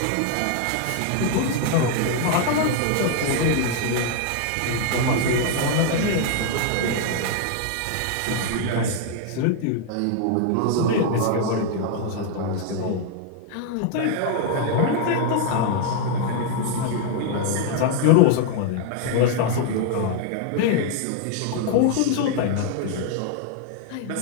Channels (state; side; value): different; both; correlation 0.00